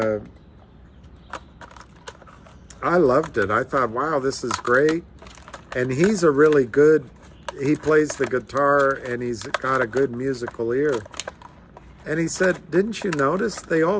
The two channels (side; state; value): both; identical; correlation 1.00